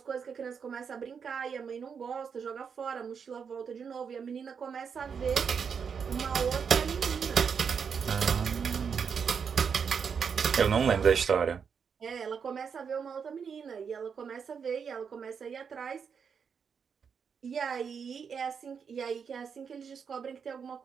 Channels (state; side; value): quieter; left; 6.5 dB